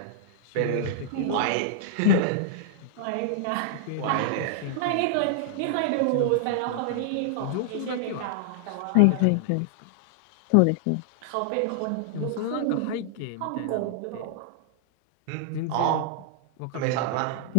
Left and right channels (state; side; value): different; both; correlation -0.01